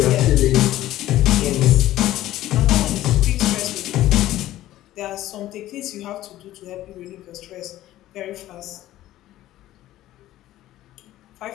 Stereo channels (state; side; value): quieter; right; 14.5 dB